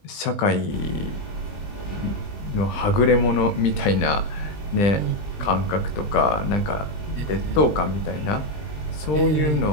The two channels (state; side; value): late; right; 20 ms